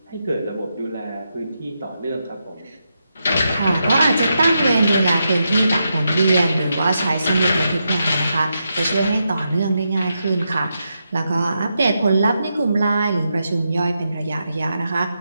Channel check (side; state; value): both; inverted; correlation -0.85